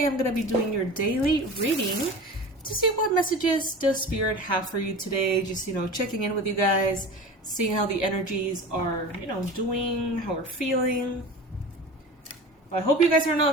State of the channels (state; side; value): normal; both; correlation 0.34